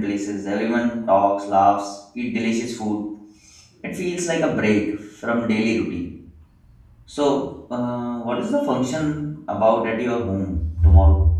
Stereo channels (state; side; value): identical; both; correlation 1.00